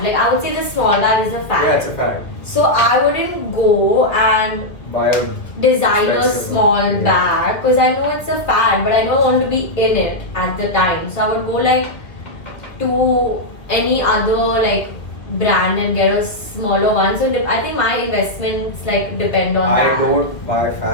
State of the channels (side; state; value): right; late; 1.9 ms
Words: Like I would say the small bag is a fad. Yeah, it's a fact. So I wouldn't go and Buy a designer Expensive small one, yeah. bag because I know it's a fad, but I don't want to be in it at the time. So I would go like to any other like brand and get a smaller one. So I think my investments like depend on I that. don't buy